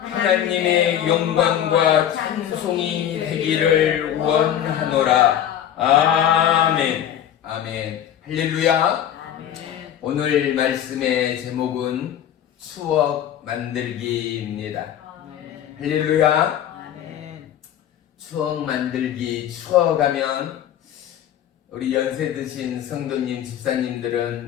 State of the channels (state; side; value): quieter; right; 10.3 dB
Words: 영광과 찬송이 되기를 원하노라. 아멘. 아멘. 할렐루야. 오늘 말씀의 제목은 추억 만들기입니다. 할렐루야. 추억 만들기, 추억하면 우리 연세 드신 성도님,